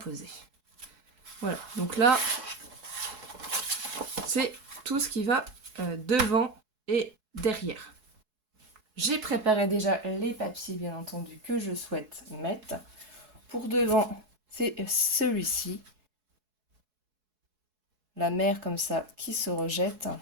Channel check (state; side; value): late; left; 4.7 ms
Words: Voilà, donc là, c'est tout ce qui va devant et derrière. J'ai préparé déjà les papiers, bien entendu, que je souhaite mettre. Pour devant, c'est celui-ci. La mer comme ça qui se rejette.